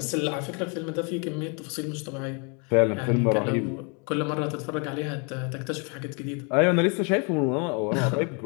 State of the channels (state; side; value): quieter; right; 34.8 dB